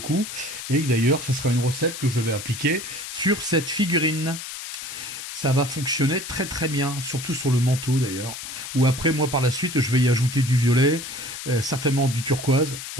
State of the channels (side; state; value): left; noise; hiss, 9 dB below the sound